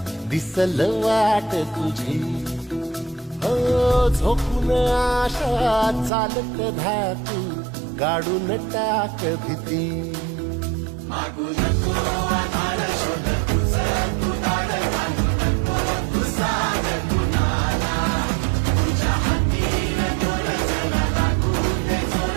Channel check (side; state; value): left; drops out; at 6.1 s